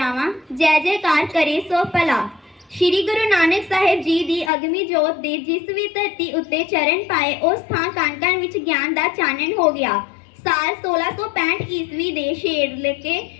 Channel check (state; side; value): drops out; right; at 4.5 s